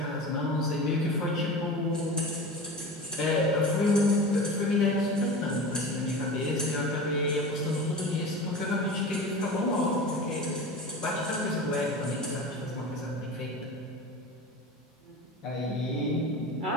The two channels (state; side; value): normal; both; correlation 0.32